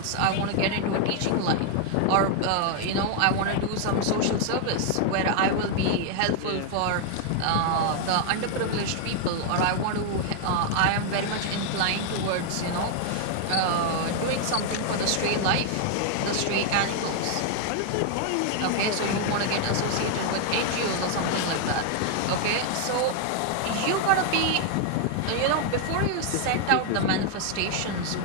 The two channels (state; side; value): different; both; correlation 0.00